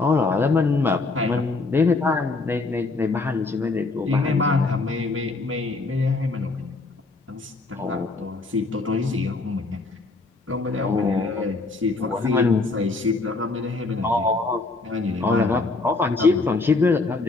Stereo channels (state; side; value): quieter; right; 3.6 dB